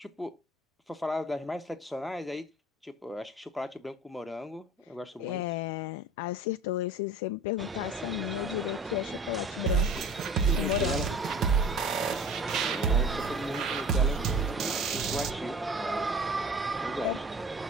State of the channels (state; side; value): normal; both; correlation 0.43